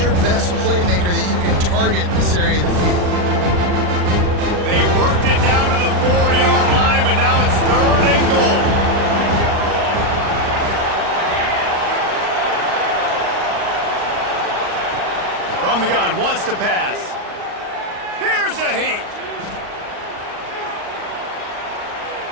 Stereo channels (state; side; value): late; left; 39 ms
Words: best playmaker that you can target in this area of the field? They worked it down to the 4-yard line, but now it's 3rd and goal. From the gun, wants to pass. Here's a heat.